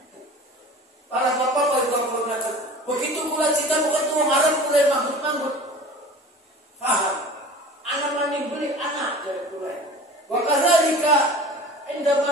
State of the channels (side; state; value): both; normal; correlation 0.40